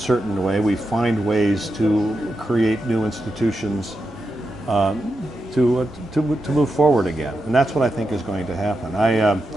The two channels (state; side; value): normal; both; correlation 0.87